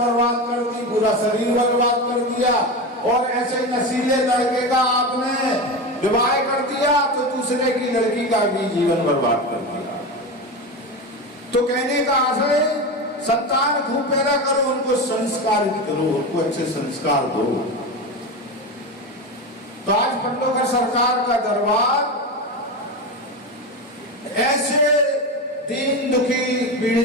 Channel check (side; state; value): both; normal; correlation 0.21